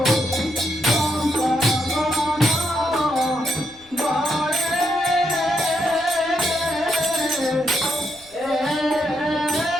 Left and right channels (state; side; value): noise; left; rumble, 29 dB below the sound